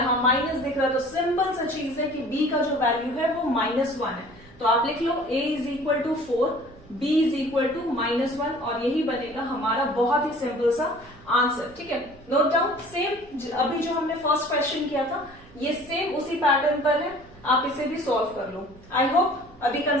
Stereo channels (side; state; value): right; noise; hum, 25 dB below the sound